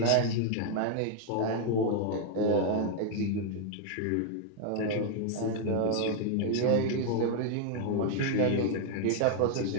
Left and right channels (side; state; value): both; different; correlation 0.00